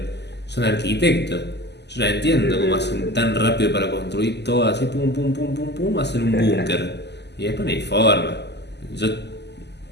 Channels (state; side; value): late; right; 0.50 ms